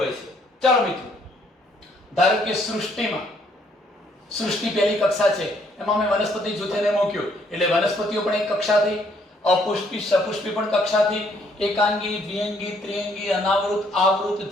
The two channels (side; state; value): both; normal; correlation 0.67